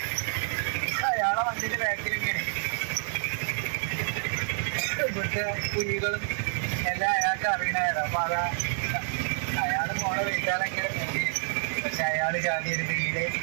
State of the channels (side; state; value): left; silent; 59 dB below the other